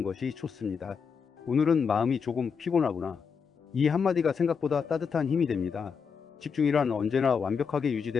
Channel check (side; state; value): right; quieter; 6.1 dB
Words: 것이 좋습니다. 오늘은 마음이 조금 피곤하구나. 이 한마디가 생각보다 따뜻한 힘이 됩니다. 집중이란 언제나 완벽하게